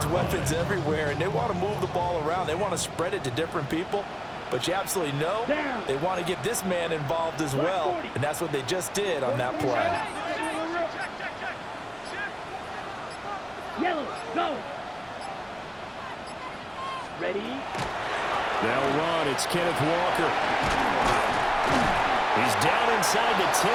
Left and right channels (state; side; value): identical; both; correlation 1.00